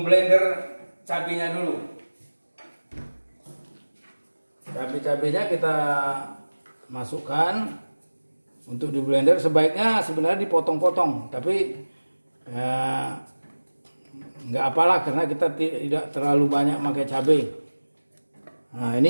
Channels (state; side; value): inverted; both; correlation -1.00